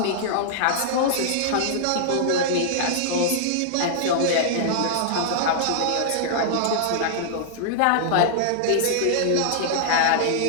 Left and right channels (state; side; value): different; both; correlation -0.01